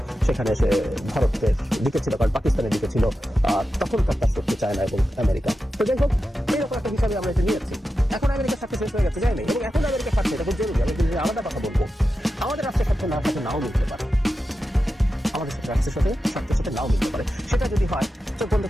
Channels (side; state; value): both; normal; correlation 0.91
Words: সেখানে সে ভারতের দিকে ছিল, কারণ পাকিস্তানের দিকে ছিল, তখনকার কাজ করতে চায় না এবং আমেরিকা। তো যাই হোক, এইরকম একটা হিসাবে আমরা এটা নিয়েছি। এখন আমেরিকার স্বার্থে শেষ হয়ে গেছে, যায়নি, এবং এখন আমেরিকার স্বার্থে এটা খুব জরুরি। আমি কিন্তু আলাদা কথা বলবো, আমাদের রাষ্ট্রের স্বার্থে নাও মিলতে পারে, আমাদের রাষ্ট্রের স্বার্থের সাথে নাও মিলতে পারে। সেটা যদি হয়, চোখ বন্ধ